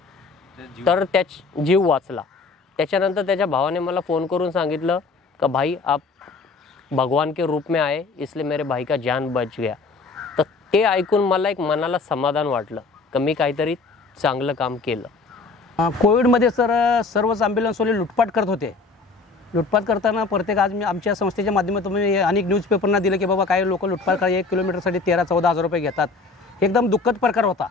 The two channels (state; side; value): quieter; right; 4.1 dB